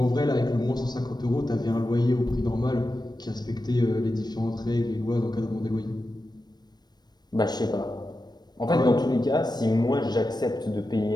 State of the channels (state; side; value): late; right; 0.20 ms